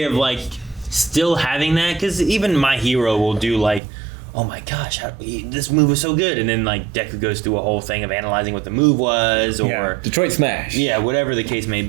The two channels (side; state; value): left; drops out; at 3.8 s